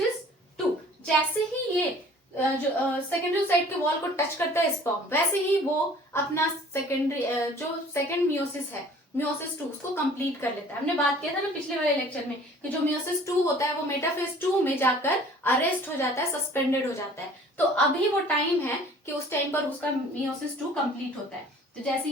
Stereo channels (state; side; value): normal; both; correlation 0.50